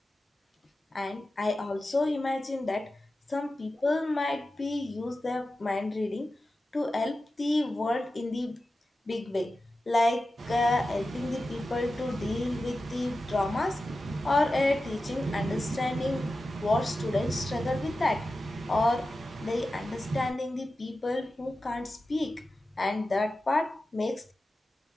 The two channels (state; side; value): normal; both; correlation 0.93